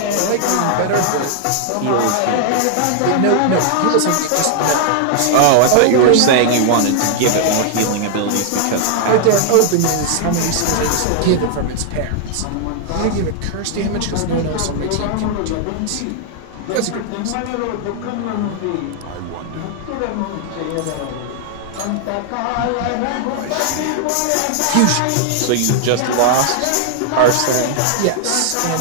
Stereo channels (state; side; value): different; both; correlation 0.00